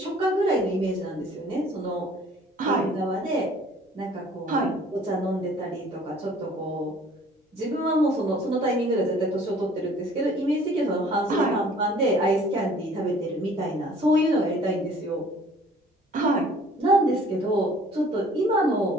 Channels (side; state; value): both; normal; correlation 0.53